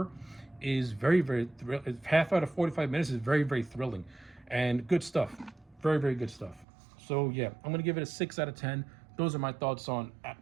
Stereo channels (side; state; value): left; drops out; at 6.7 s